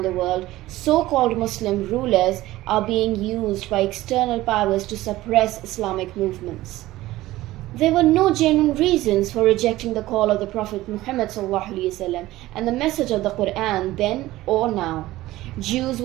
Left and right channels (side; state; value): left; quieter; 16.8 dB